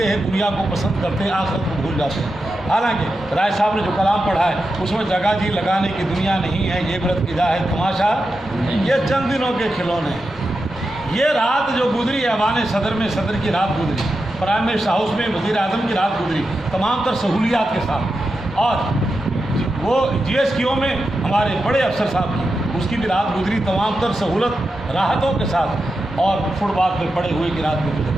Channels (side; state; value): both; normal; correlation 0.89